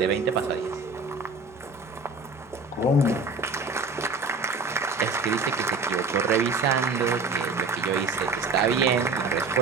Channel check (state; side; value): quieter; left; 3.8 dB